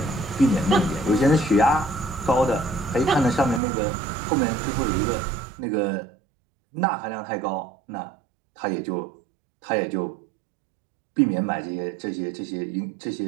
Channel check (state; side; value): drops out; left; at 3.6 s